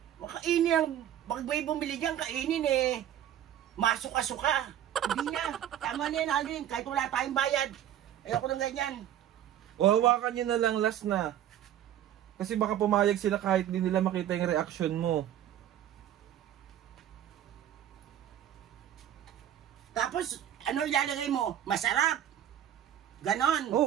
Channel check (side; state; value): left; quieter; 11.1 dB